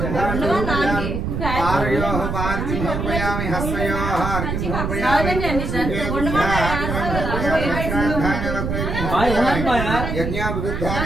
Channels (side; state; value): right; noise; rumble, 2 dB below the sound